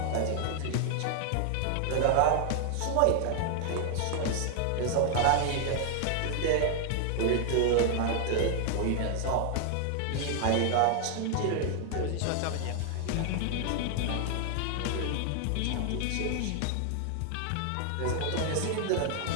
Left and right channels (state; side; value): different; both; correlation 0.00